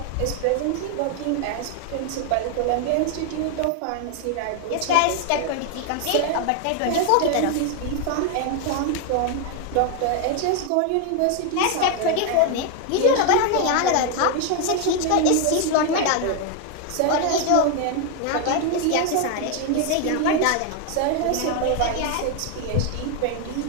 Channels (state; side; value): different; both; correlation 0.01